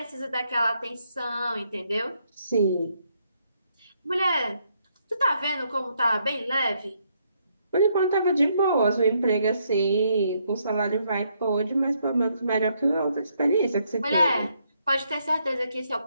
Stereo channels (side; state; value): both; inverted; correlation -0.74